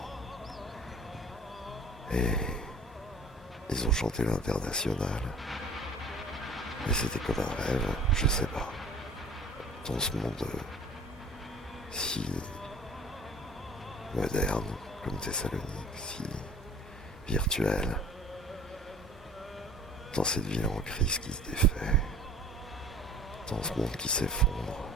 Et ils ont chanté l'Internationale. Et c'était comme un rêve, je sais pas. Dans ce monde si moderne comme Thessalonique, si virtuel, dans cette ville en crise qui se défait, dans ce monde qui s'effondre.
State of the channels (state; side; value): normal; both; correlation 0.48